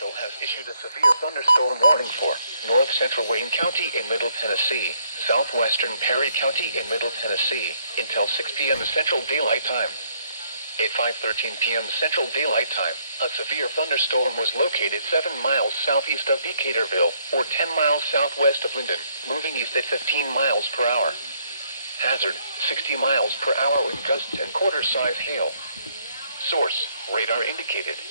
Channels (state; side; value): inverted; both; correlation -0.69